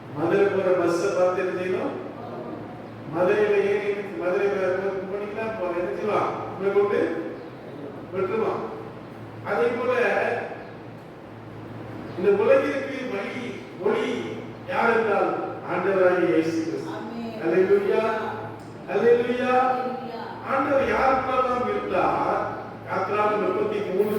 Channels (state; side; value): identical; both; correlation 1.00